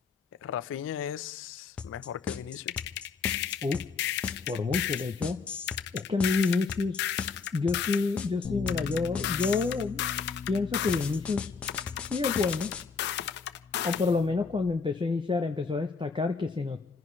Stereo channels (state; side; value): quieter; right; 4.9 dB